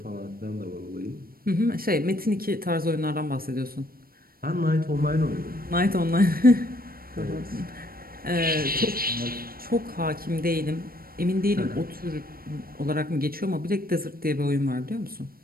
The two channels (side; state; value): left; late; 0.43 ms